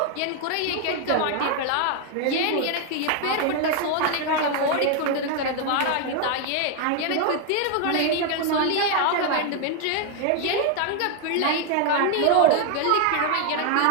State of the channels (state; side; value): different; both; correlation 0.00